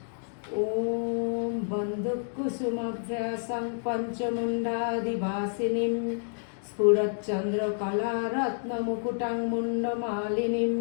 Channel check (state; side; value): silent; right; digital silence